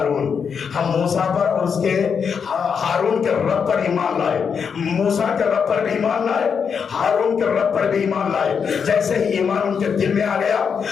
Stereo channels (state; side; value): quieter; right; 6.5 dB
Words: ہم موسیٰ پر اور اس کے ہارون کے رب پر ایمان لائے، موسیٰ کے رب پر بھی ایمان لائے، ہارون کے رب پر بھی ایمان لائے۔ جیسے ہی ایمان ان کے دل میں آ گیا،